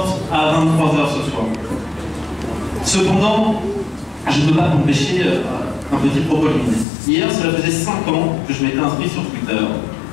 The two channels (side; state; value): right; drops out; at 6.9 s